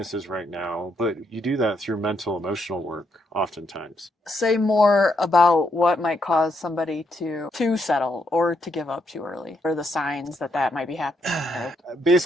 right now, but you do that through mental emotional work oftentimes. Say more about what might cause somebody to settle or to give up too early, or the signs that might be happening. Right?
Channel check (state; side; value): normal; both; correlation 0.77